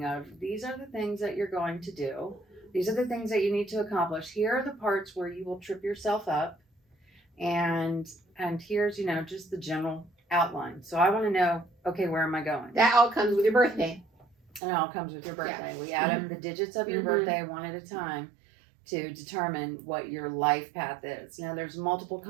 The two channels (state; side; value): drops out; left; at 14.6 s